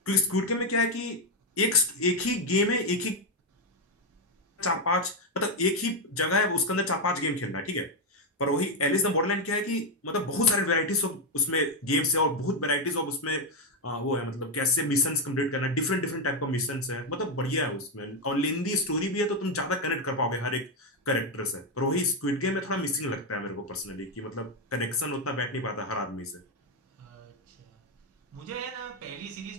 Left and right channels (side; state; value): both; normal; correlation 0.05